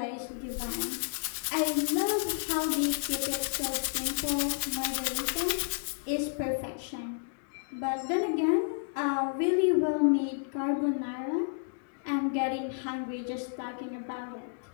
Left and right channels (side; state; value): right; silent; digital silence